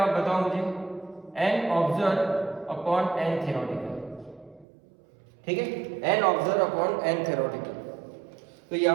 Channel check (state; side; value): drops out; left; at 4.7 s